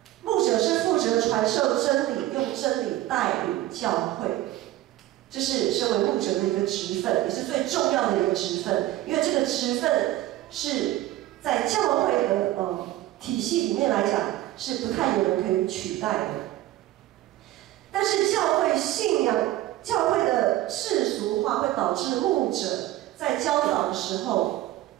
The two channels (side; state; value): left; quieter; 15.2 dB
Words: 牧者是负责传授真理，用真理带领教会，这是身为牧者的一个职分，也是最重要的一个职分。因为这个职分是在教会的体系里面来讲，是不太有人可以取代的。但是教会信仰、教会的世俗化会导致牧者在教导的时候